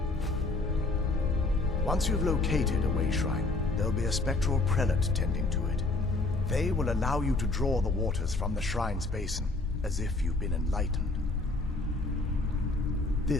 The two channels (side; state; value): right; quieter; 3.3 dB